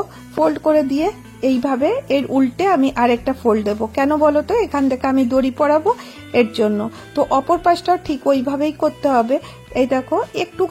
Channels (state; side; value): identical; both; correlation 1.00